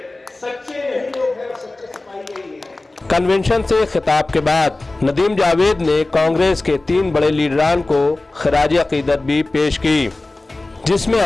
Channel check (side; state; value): right; quieter; 3.0 dB